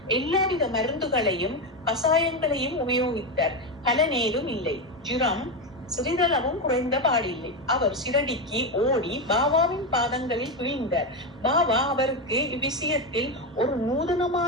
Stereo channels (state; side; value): normal; both; correlation 0.12